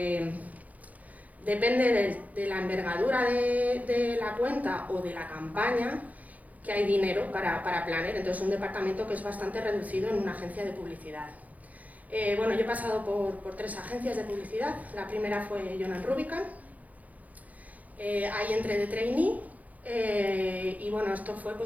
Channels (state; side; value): late; left; 0.076 ms